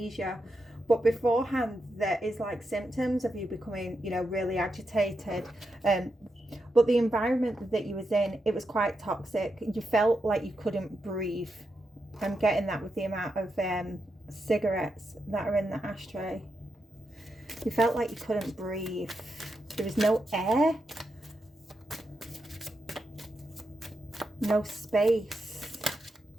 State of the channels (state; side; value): normal; both; correlation 0.85